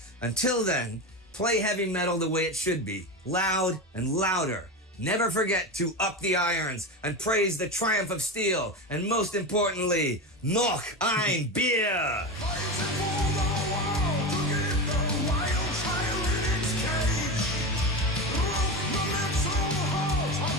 Until then, play heavy metal the way it should be, loud and louder. Never forget to up the irons and praise the triumph of steel. And most importantly, noch ein Bier!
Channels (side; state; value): both; normal; correlation 0.21